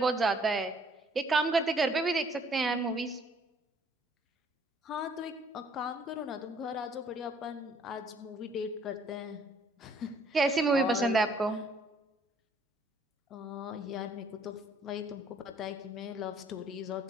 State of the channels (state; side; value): normal; both; correlation 0.62